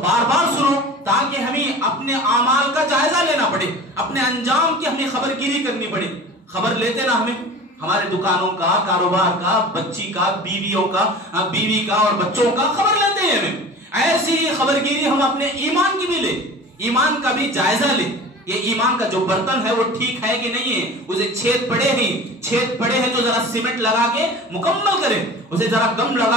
بار سنو، تاکہ ہمیں اپنے اعمال کا جائزہ لینا پڑے، اپنے انجام کی ہمیں خبر گیری کرنی پڑے. خبر لیتے نا ہمیں ہمارے دکانوں کا، کاروبار کا، بچی کا، بیویوں کا، بیوی کا اور بچوں کا خبر لیتے ہیں ہمیں. ایسی خبر گیری ہم اپنے ایمان کی بھی لیں، ایمان کا بھی جائزہ لیں. یہ ایمان کا جو برتن ہے وہ ٹھیک ہے کہ نہیں ہے، اسے چھید پڑے ہیں تو ذرا سیمنٹ لگا کے مکمل کریں، اسے ذرا گم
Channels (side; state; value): both; normal; correlation 0.38